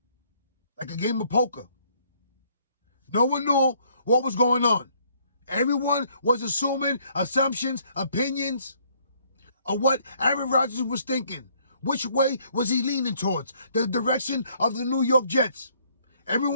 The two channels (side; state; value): both; inverted; correlation -0.65